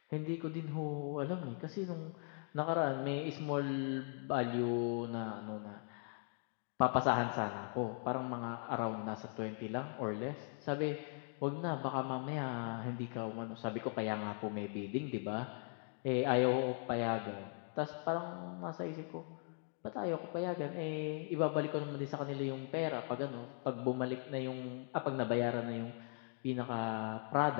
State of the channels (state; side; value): silent; right; 51 dB below the other